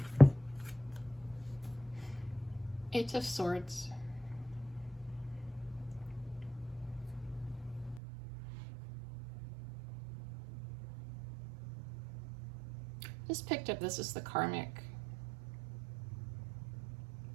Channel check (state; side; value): drops out; left; at 8.0 s